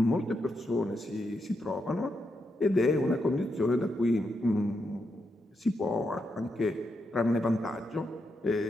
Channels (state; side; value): normal; both; correlation 0.83